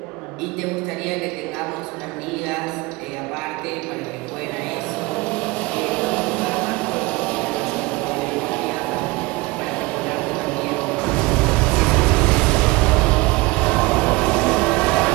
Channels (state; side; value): quieter; left; 22.9 dB